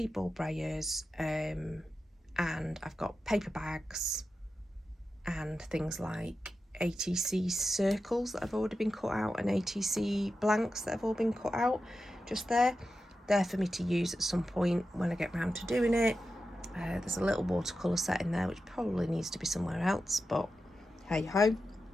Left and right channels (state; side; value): normal; both; correlation 0.91